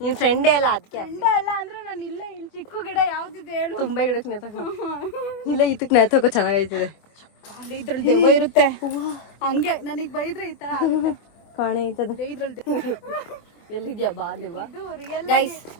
ನಿನ್ ಫ್ರೆಂಡೇ ಎಲ್ಲ ಅದಕ್ಕೆ. ಫ್ರೆಂಡೇ ಅಲ್ಲ ಅಂದ್ರೆ ನಾನು ಇಲ್ಲಿ ಚಿಕ್ಕ ಗಿಡ ಯಾವ್ದಿದೆ ಹೇಳು? ತುಂಬಾ ಗಿಡಕ್ಕೆ ನೇತಕೋ. ಇಲ್ಲ, ಇದಕ್ಕೆ ನೇತಕೋ ಚೆನ್ನಾಗೈತದೆ. ಇದ್ರಲ್ಲಿ ದೆವ್ವ ಇರುತ್ತೆ. ಹಂಗೆ ನನಗ್ ಬೈದ್ರೆ ಈ ತರ ಕಾಣೆ ಐತದ. ಇದ್ರಲ್ಲಿ ಎಲ್ಲಿದ್ಯಾ ಬಾ ದೆವ್ವ. ಗೈಸ್,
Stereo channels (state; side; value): late; right; 25 ms